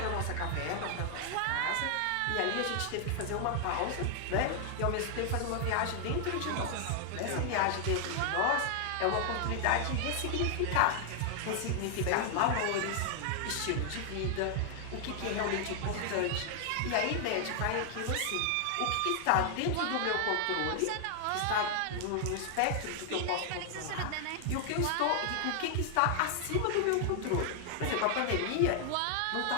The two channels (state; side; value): different; both; correlation 0.00